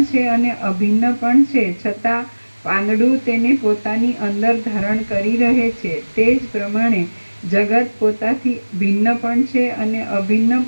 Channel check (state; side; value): inverted; both; correlation -1.00